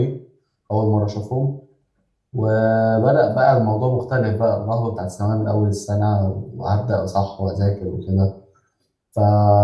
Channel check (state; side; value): identical; both; correlation 1.00